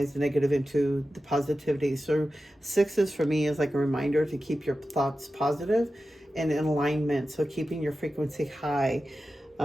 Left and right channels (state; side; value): normal; both; correlation 0.93